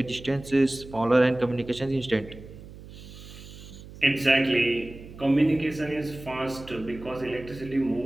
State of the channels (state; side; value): noise; right; hum, 16 dB below the sound